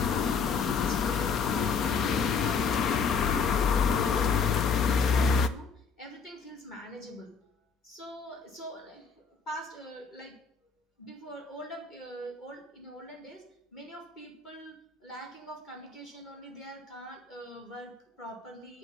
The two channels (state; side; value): quieter; right; 5.6 dB